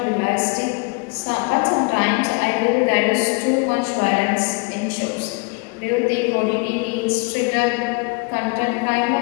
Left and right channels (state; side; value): quieter; right; 30.9 dB